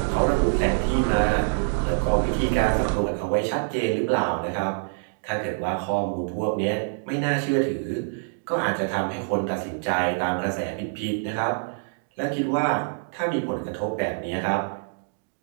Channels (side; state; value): left; silent; digital silence